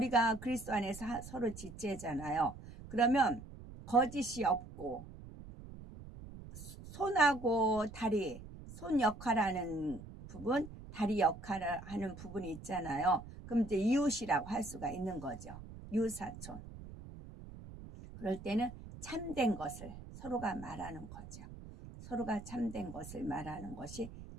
그리스도 안에서 서로 지체잖아요. 그러면 거짓이 없고 손하고 다리, 손 역할하는 부분, 다리 역할을 하는 부분이 있잖아요. 그럼 이제 이웃이라고 할 수가 있는 거죠. 이웃사촌. 그럴 때는 참된 것을 서로가 말하는 거죠. 서로가 참된 것을 말하는 것이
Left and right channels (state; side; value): noise; right; rumble, 14 dB below the sound